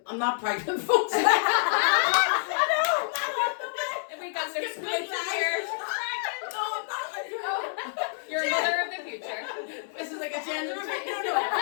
I'm not pregnant, folks.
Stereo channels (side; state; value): right; silent; digital silence